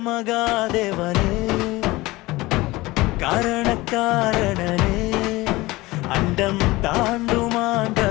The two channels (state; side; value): quieter; right; 20.4 dB